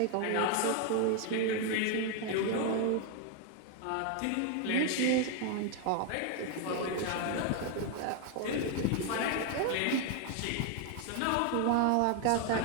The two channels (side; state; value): both; different; correlation 0.01